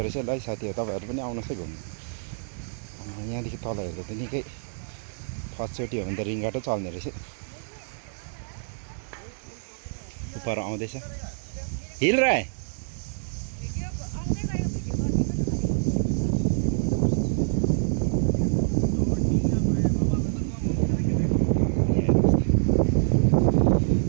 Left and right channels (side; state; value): left; silent; digital silence